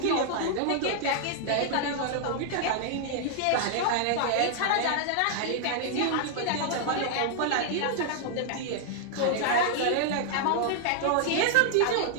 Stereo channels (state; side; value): different; both; correlation 0.00